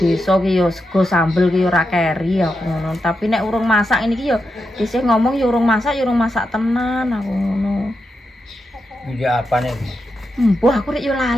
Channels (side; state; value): both; normal; correlation 0.86